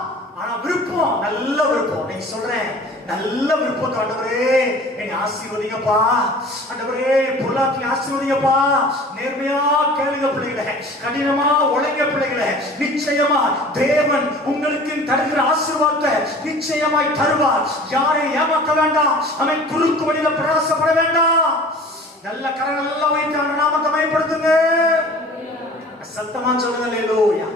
ஆனா விருப்பம் நல்ல விருப்பம். நீ சொல்றேன், நல்ல விருப்பம். ஆண்டவரே என்னை ஆசீர்வதிங்கப்பா, ஆண்டவரே பொருளாதாரத்தை ஆசீர்வதிங்கப்பா. நேர்மையா கேளுங்க பிள்ளைகளே, கடினமா உழைங்க பிள்ளைகளே. நிச்சயமா தேவன் உங்களுக்கு தருகிற ஆசீர்வாதத்தை நிச்சயமாய் தருவார். யாரையும் ஏமாற்ற வேண்டாம். அவன் குறுக்கு வழியில பிரயாசப்பட வேண்டாம். நல்ல கரங்கள் எல்லாம் வைத்து அந்த நாமத்தை மகிமைப்படுத்துங்க. சத்தமா சொல்லுங்க. அல்லேலூயா.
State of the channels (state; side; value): normal; both; correlation 0.44